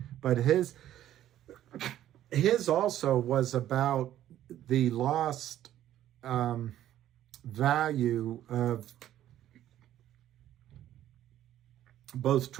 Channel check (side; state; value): left; quieter; 12.3 dB